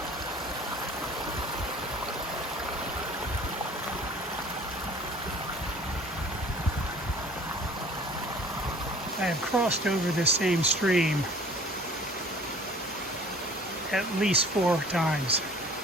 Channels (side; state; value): both; normal; correlation 0.50